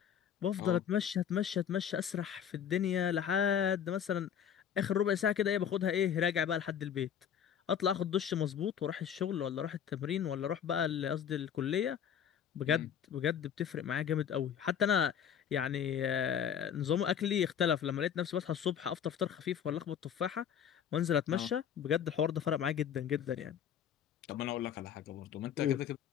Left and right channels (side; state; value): right; quieter; 8.5 dB